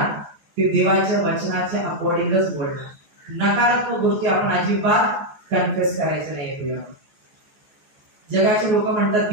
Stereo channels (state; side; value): late; left; 14 ms